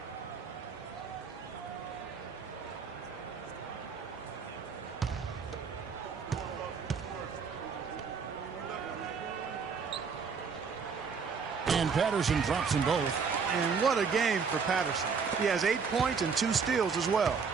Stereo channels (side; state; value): left; quieter; 5.7 dB